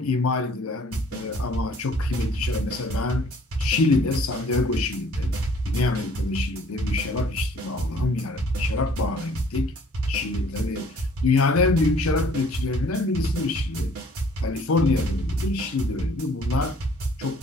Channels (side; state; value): both; normal; correlation 0.56